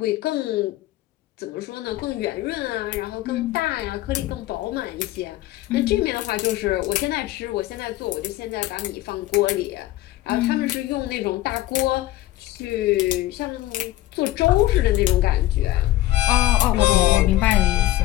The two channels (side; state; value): right; quieter; 15.6 dB